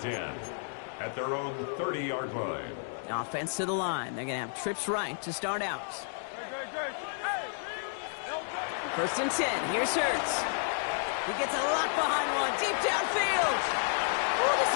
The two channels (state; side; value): silent; right; digital silence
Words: at their own 30-yard line. Offense to the line. They're going to have trips right to start out. 1st and 10. Here's Hurts. He gets a lot behind one. Deep downfield. Oh, this